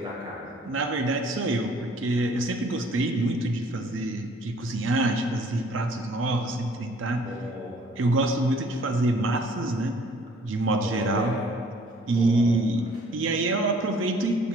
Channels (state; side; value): normal; both; correlation 0.57